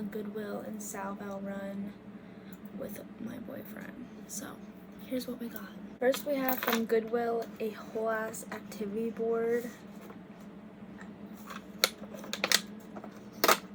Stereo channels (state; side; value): identical; both; correlation 1.00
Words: Goodwill and Salval run with my boyfriend. So here's what we got. First, we have from Goodwill a whole ass activity board.